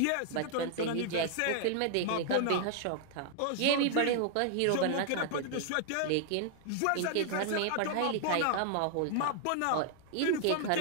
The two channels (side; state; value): both; different; correlation 0.00